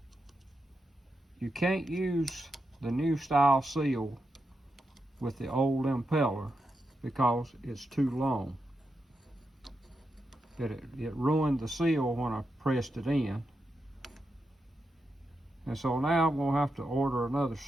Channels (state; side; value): normal; both; correlation 0.86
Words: You can't use the new style seal with the old impeller because it's too long. It ruined the seal when I pressed it in. And so now I'm going to have to order another